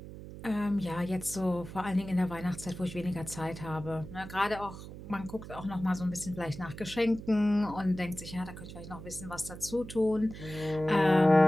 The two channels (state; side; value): noise; right; hum, 12 dB below the sound